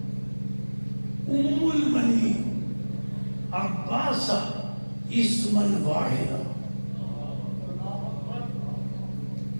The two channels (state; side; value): inverted; both; correlation -1.00